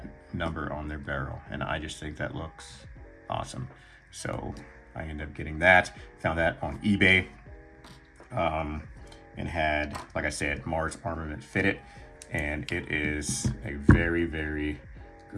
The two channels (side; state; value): both; identical; correlation 1.00